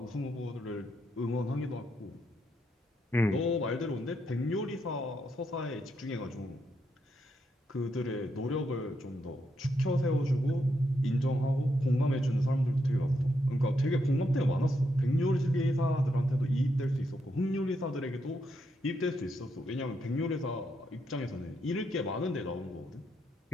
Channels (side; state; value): both; normal; correlation 0.79